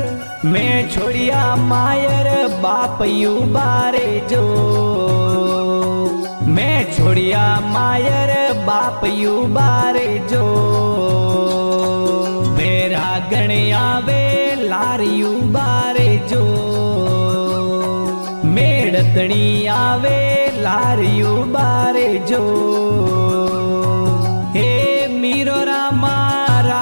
मैं छोड़िया मायर बाप युबारे जो मैं छोड़िया मायर बाप युबारे जो मेरा गण आवे लार युबारे जो मेड़तणी आवे लार युबारे जो हे मीरो रामा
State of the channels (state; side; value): inverted; both; correlation -1.00